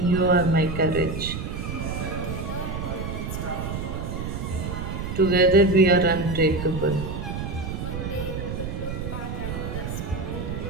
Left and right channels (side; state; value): right; noise; rumble, 5 dB below the sound